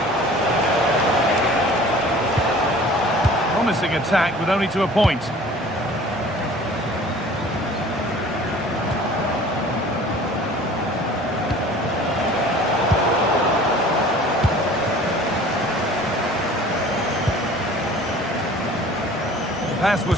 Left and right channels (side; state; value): both; normal; correlation 0.47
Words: Promising attack with only to a point. pass